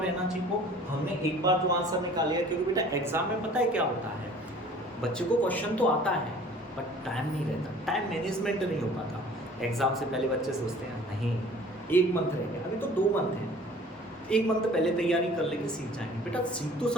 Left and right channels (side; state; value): both; normal; correlation 0.49